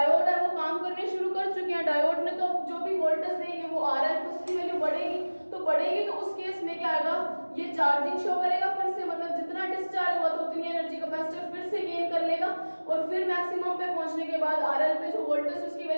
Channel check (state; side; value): inverted; both; correlation -1.00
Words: है वो काम करने शुरू कर चुके हैं, डायोड ने तो जो भी वोल्टेज देंगे वो RL उसकी वैल्यू बढ़ेगी, तो उस केस में क्या आएगा, ये चार्जिंग शो करेगा फिर से, मतलब जितना डिस्चार्ज हुआ तो उतनी एनर्जी कैपेसिटर फिर से गेन कर लेगा, और फिर मैक्सिमम पे पहुंचने के बाद RL पे जो वोल्टेज उसकी